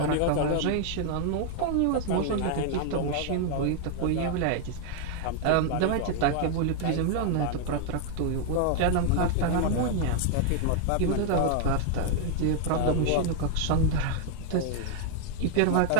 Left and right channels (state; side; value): different; both; correlation 0.00